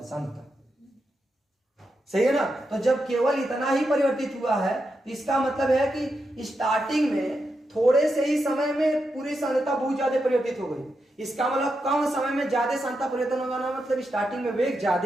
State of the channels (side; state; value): both; normal; correlation 0.86